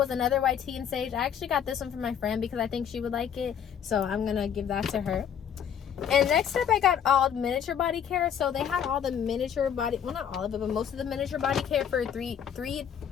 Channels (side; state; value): right; quieter; 8.5 dB